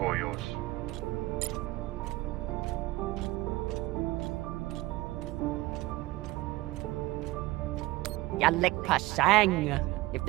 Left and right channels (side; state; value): left; quieter; 19.1 dB